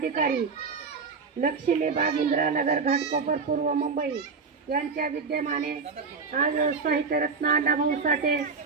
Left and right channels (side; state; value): left; quieter; 5.0 dB